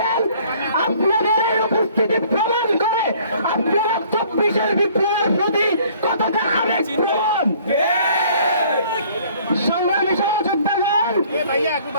আপনাদের এই উপস্থিতি প্রমাণ করে আপনারা 24-এর বিপ্লবের প্রতি কতটা আবেগ প্রবণ। সংগ্রামী সহযোদ্ধাগণ,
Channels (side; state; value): both; inverted; correlation -0.56